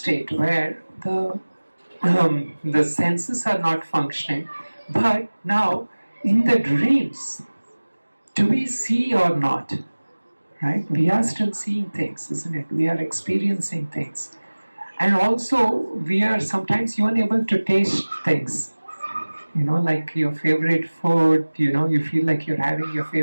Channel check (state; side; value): inverted; both; correlation -1.00